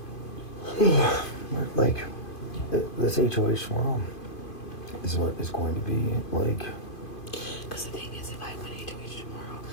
Like, this HOH tomorrow is what is going to be like. Because the thing is, if I win HOH tomorrow,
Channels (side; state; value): right; late; 2.5 ms